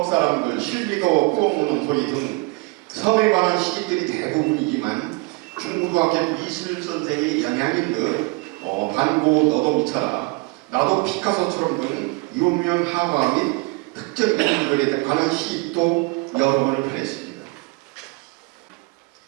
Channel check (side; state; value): left; quieter; 28.2 dB